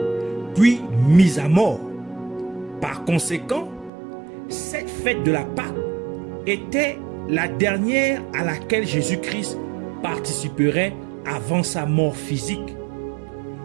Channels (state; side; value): drops out; left; at 3.9 s